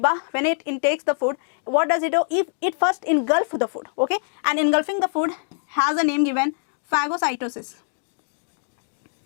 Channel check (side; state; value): right; silent; digital silence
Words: when it intakes the food, what does it do? If it first engulf the food, okay, and engulfing the food has a name given, phagocytosis.